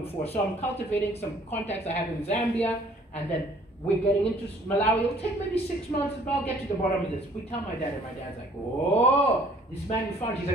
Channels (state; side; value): normal; both; correlation 0.57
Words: before, so I'm cultivating some contacts I have in Zambia, and then we're getting into Malawi. It'll take maybe 6 months, but I'll get to the bottom of this. We tell my dad, and my dad's like, oh, this man you found, he's